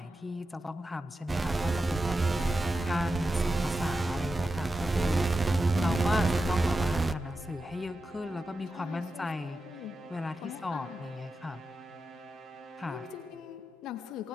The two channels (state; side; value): normal; both; correlation 0.91